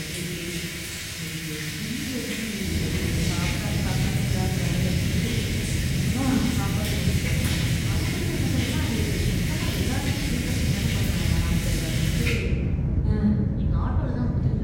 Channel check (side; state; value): both; identical; correlation 1.00